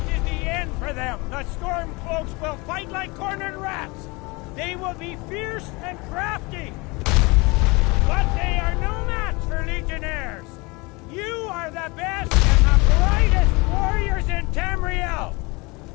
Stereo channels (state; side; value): quieter; right; 26.0 dB